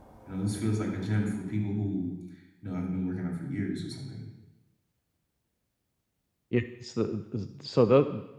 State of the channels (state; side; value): identical; both; correlation 1.00